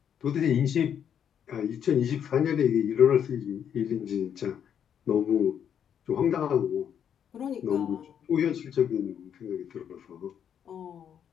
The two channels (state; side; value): quieter; right; 8.6 dB